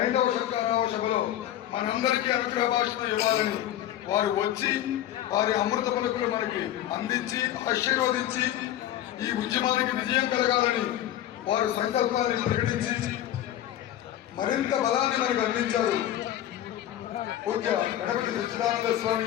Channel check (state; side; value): quieter; right; 12.5 dB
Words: 5వ శంకరావ సభలో మనందరికీ అనుగ్రహ భాషను ఇవ్వాలని వారు వచ్చి వారి అమృత పలుకులు మనకి అందించి ఆశీర్వదించి ఈ ఉద్యమానికి విజయం కలగాలని వారు సంకల్పాన్ని ప్రకటించి మరింత బలాన్ని మనకు అందించారు. పూజ్య గణపతి సచ్చిదానంద